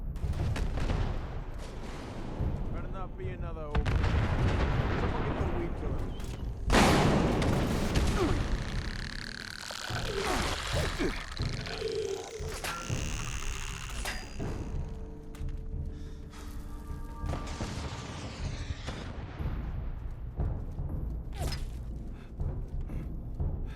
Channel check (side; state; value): both; identical; correlation 1.00